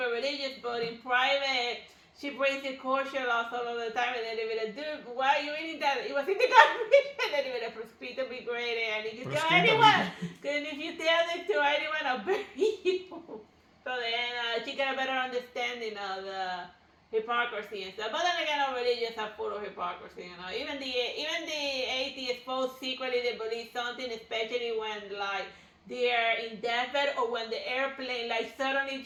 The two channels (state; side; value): identical; both; correlation 1.00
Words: religious, but in private she breaks the kosher laws all of the time, and then they be like, dude, why are you eating that? It was in the garbage. And then they be like, proscrito be great, and if you tell anyone, and if you tell it to anyone, I'll bury you. So then she got a better understanding of the hypocrisy and stuff. But then again, our religions are full of hypocrisy, you know. Even the atheists both secretly they believe something, especially when like they're in deathbed or when the airplane like suddenly